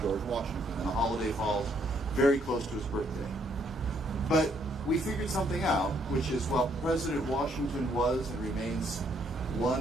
Washington, and the holiday falls very close to his birthday. But we figured something out, which is, while President Washington was and remains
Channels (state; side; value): normal; both; correlation 0.70